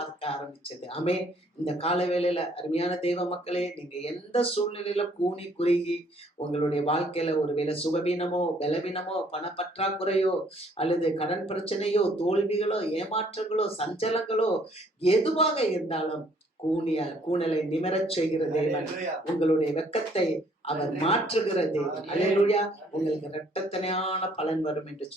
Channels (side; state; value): both; normal; correlation 0.63